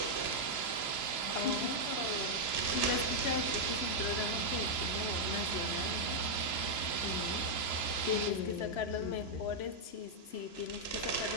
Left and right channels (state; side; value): late; right; 3.0 ms